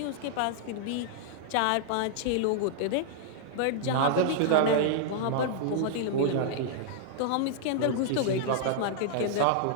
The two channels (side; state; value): both; different; correlation -0.01